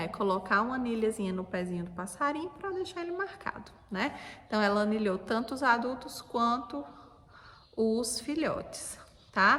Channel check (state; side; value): identical; both; correlation 1.00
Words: É colocar uma anilhazinha no pezinho do passarinho para deixar ele marcado, né? Então, ela anilhou tanto os adultos quanto os filhotes,